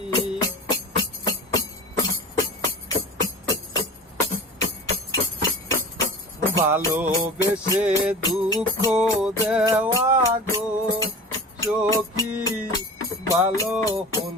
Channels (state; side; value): normal; both; correlation 0.36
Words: ভালোবেসে দুঃখ দেওয়া গো সখী, ভালো